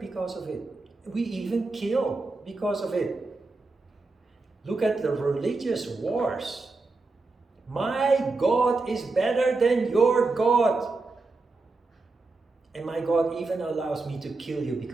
because of it. We even kill because of it. Look at the religious wars. My God is better than your God. And my God even allows me to kill you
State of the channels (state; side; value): quieter; left; 3.6 dB